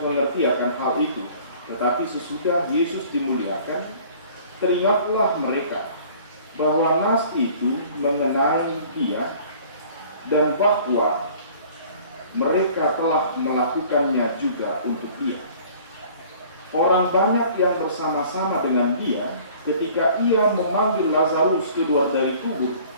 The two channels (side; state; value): both; inverted; correlation -0.51